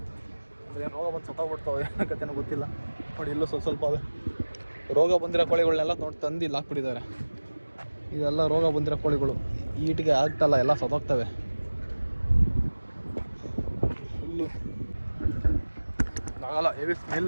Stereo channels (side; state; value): both; inverted; correlation -1.00